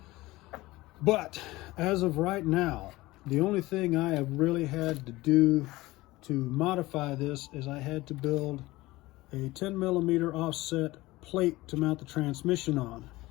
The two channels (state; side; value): quieter; right; 19.3 dB